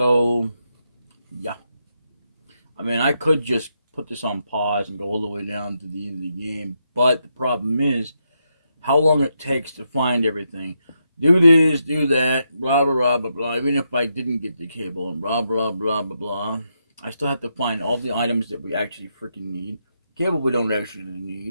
yeah. I mean, I could just put this on pause and go all the way down to the end of the game, but the problem is how long it takes to find everything. Do this, do that, blah, blah, blah, blah, blah. Even if I didn't get the cable and blah, blah, blah, blah, blah, I still have to find all the items that we actually freaking need. Cable we don't actually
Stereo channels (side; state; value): both; inverted; correlation -0.81